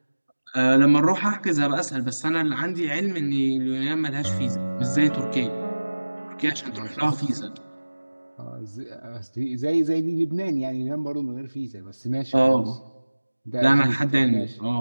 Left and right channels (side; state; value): both; inverted; correlation -1.00